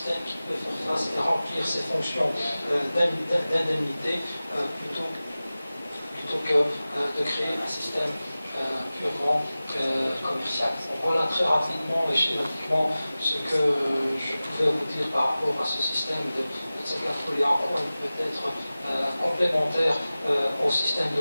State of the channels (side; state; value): both; inverted; correlation -0.97